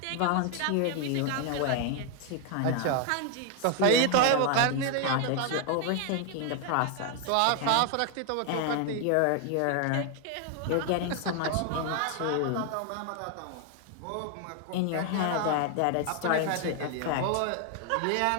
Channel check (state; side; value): different; both; correlation 0.01